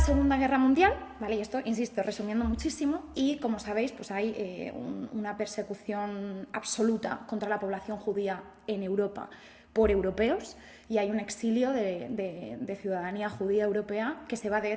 Guerra Mundial, ¿vale? Y esto, insisto, resumiendo muchísimo, y como sabéis, pues hay una persecución absoluta contra la población judía en Europa por europeos y hay un exilio de ciudadanía judía europea que se va, de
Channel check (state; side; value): identical; both; correlation 1.00